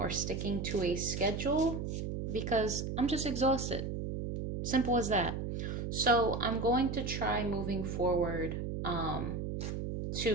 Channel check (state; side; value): noise; right; hum, 4 dB below the sound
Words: sticking to a schedule because I'm just exhausted. Simple as that. So, I'm going to try moving forward